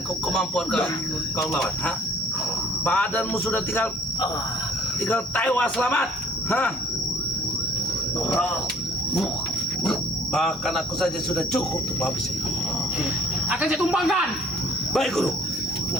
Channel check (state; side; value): normal; both; correlation 0.56